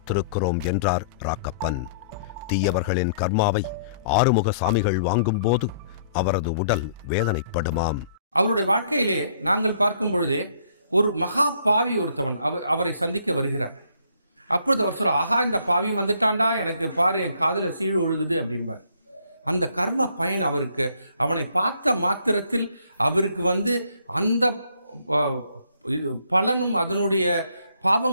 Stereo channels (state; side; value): inverted; both; correlation -0.63